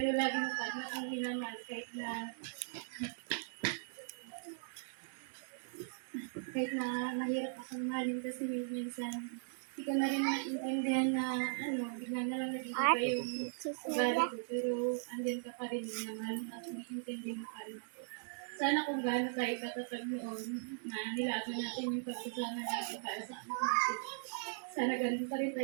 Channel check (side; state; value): left; silent; digital silence